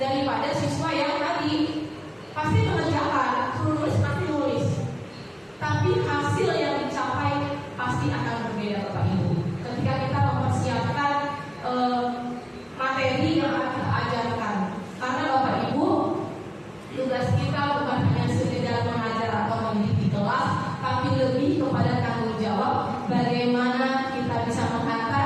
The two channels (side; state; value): both; identical; correlation 1.00